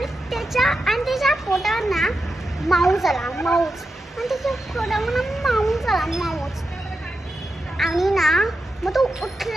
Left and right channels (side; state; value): both; normal; correlation 0.89